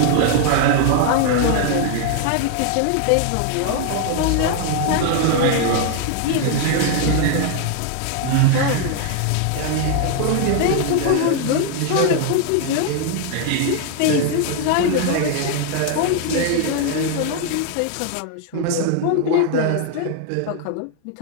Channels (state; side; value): different; both; correlation 0.00